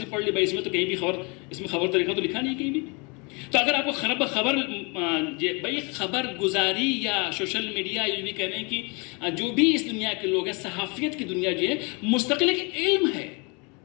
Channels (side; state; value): right; quieter; 30.9 dB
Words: پڑھ لی. بھائی اس میں تو کہیں بھی اس میں خبر طریقہ تو لکھا نہیں کہیں بھی. تو اگر آپ کو خبر گزاری یا سوشل میڈیا یہ بھی کہہ رہے ہیں کہ جو بھی اس دنیا کے لوگ ہیں، صحافیت کی دنیا جو ہے مستقل ایک